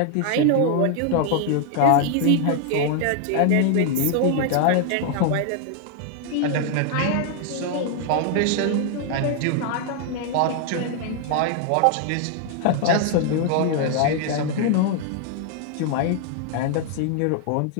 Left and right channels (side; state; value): both; different; correlation 0.00